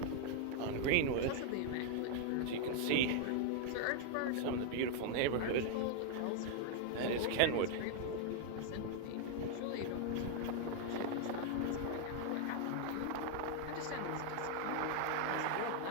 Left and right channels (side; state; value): both; different; correlation 0.00